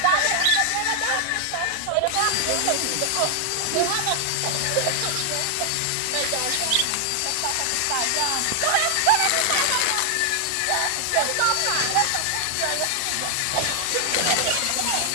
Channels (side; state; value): both; different; correlation 0.00